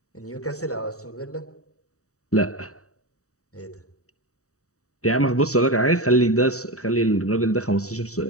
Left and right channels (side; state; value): right; late; 0.65 ms